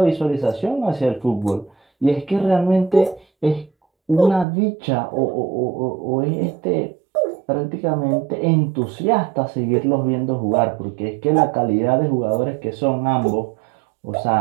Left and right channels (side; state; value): left; drops out; at 4.5 s